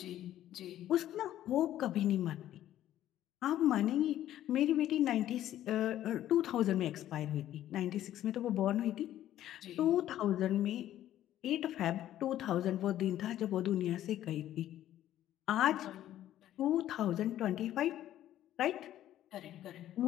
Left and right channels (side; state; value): right; quieter; 12.5 dB